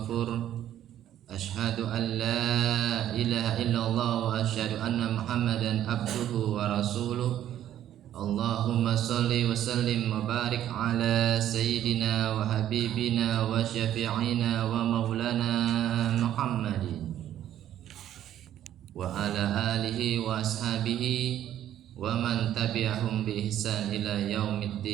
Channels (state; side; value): quieter; left; 11.6 dB